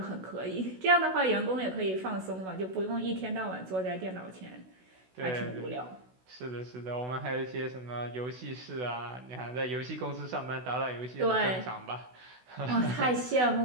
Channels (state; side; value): late; left; 16 ms